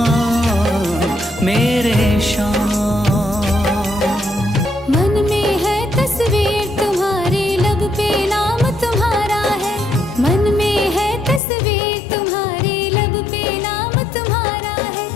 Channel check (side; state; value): right; drops out; at 11.4 s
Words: मेरे श्याम। मन में है तस्वीर तुम्हारी, लब पे नाम तुम्हारा है। मन में है तस्वीर तुम्हारी, लब पे नाम तुम्हारा है।